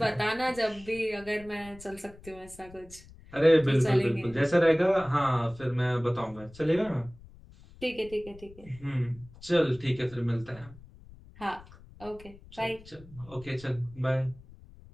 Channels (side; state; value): left; noise; rumble, 21 dB below the sound